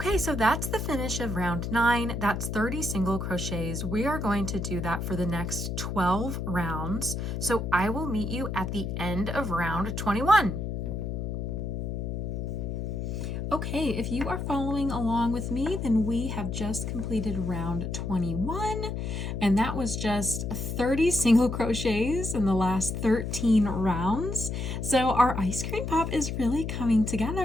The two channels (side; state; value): left; noise; hum, 3 dB below the sound